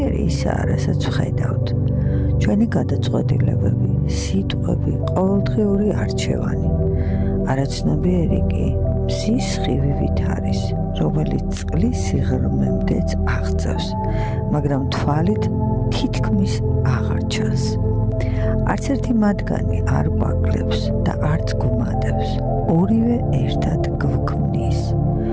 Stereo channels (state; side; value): identical; both; correlation 1.00